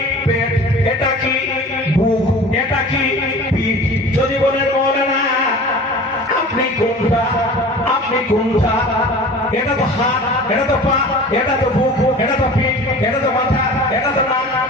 পেট। এটা কি? বুক। এটা কি? পিঠ। যদি বলেন মৌলানা আপনি কোনটা, আপনি কোনটা? এটা তো হাত, এটা তো পা, এটা তো বুক, এটা তো পিঠ, এটা তো মাথা, এটা তো নাক,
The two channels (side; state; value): both; normal; correlation 0.40